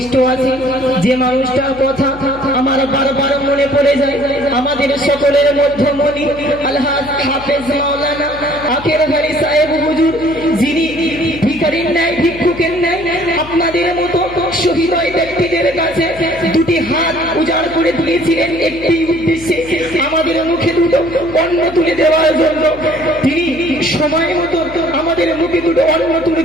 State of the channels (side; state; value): left; noise; hum, 17 dB below the sound